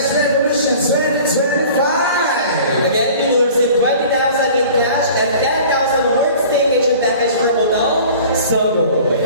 Revolution 2025! Again, you will receive 20,000 in cash and 10,000 worth staycation package for Hotel Sogo.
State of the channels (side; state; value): both; inverted; correlation -0.45